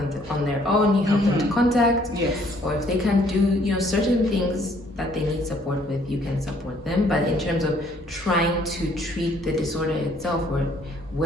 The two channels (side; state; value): both; normal; correlation 0.63